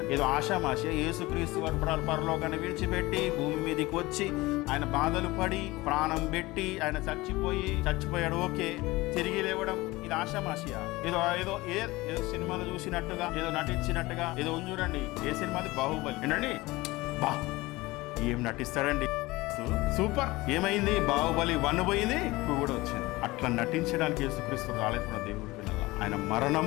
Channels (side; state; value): right; quieter; 20.6 dB